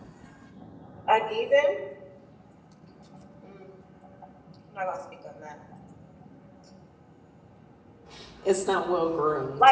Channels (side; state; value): both; identical; correlation 1.00